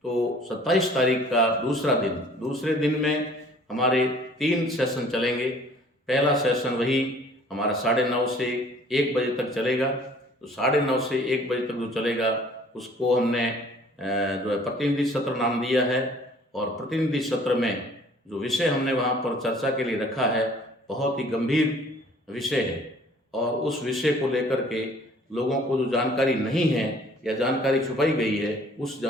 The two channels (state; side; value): normal; both; correlation 0.54